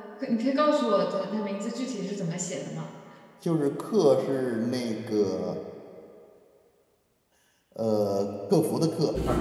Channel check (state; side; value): identical; both; correlation 1.00